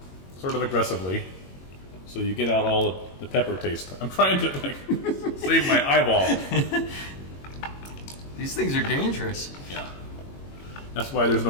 sort of aggressively so you get out all of the pepper taste. I'm trying to like save my eyeball. These things are dangerous. Yeah. That's why there's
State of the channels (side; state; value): right; late; 22 ms